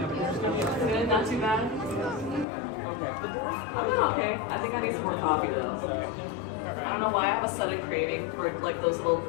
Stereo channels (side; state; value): right; drops out; at 2.5 s